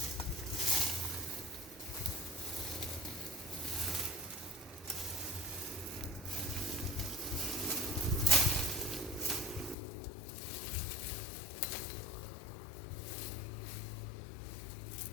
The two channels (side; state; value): right; drops out; at 9.8 s